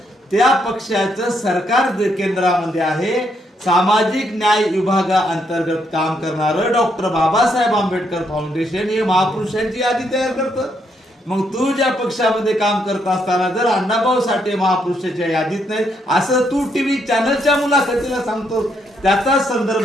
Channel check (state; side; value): normal; both; correlation 0.75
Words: त्या पक्षाचं सरकार केंद्रामध्ये आहे, सामाजिक न्याय विभागाअंतर्गत काम करणारं डॉक्टर बाबासाहेब आंबेडकर फाउंडेशन हे महापुरुषांची यादी तयार करतं। मग तू ज्या पक्षामध्ये काम करत असताना जर अण्णाभाऊ साठे महापुरुषाच्या यादीत नाही असं तू टीव्ही चॅनलच्या मुलाखतीला सांगतो, त्याचा